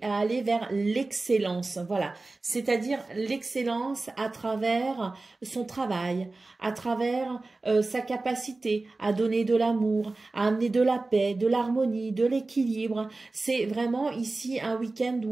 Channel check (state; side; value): quieter; left; 3.3 dB